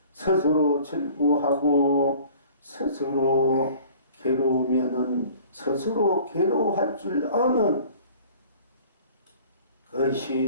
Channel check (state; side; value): inverted; both; correlation -0.49